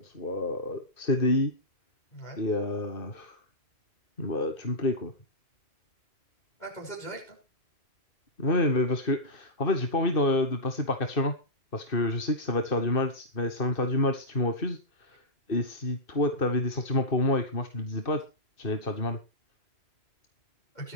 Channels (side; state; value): right; late; 2.6 ms